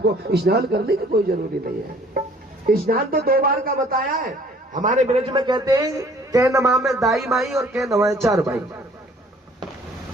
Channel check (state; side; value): normal; both; correlation 0.56